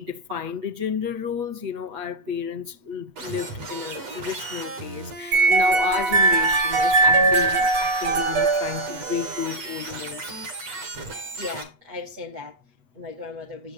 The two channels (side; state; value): left; late; 8.2 ms